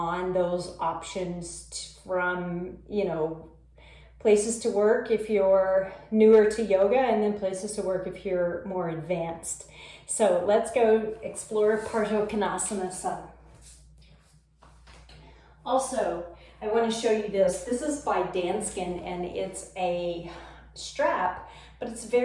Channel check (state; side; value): identical; both; correlation 1.00